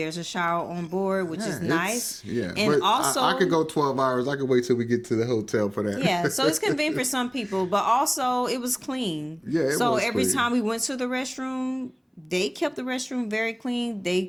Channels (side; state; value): both; identical; correlation 1.00